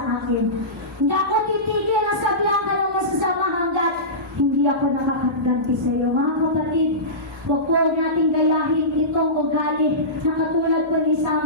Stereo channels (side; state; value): both; normal; correlation -0.20